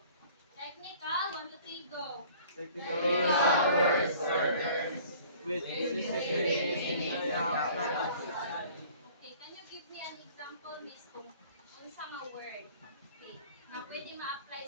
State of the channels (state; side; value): inverted; both; correlation -0.51